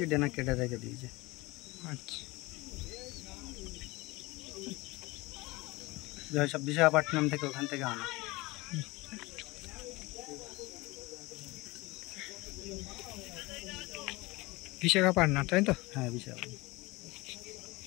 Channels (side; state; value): right; quieter; 22.4 dB